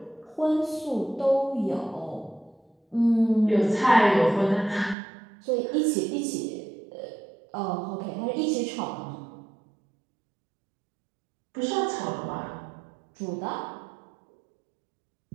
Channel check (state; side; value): drops out; left; at 5.0 s